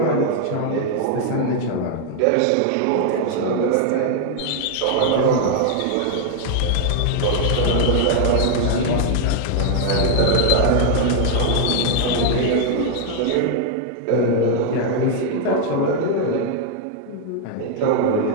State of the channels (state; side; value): different; both; correlation 0.00